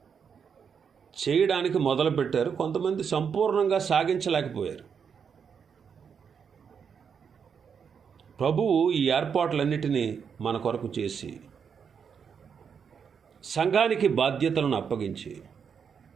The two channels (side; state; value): left; quieter; 6.8 dB